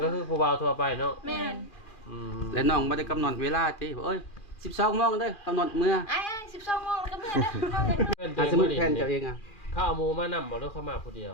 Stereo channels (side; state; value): right; late; 2.4 ms